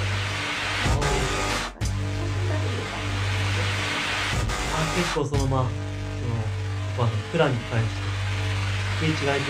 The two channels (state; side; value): identical; both; correlation 1.00